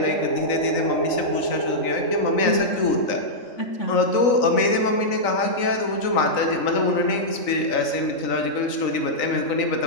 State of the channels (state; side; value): late; right; 3.9 ms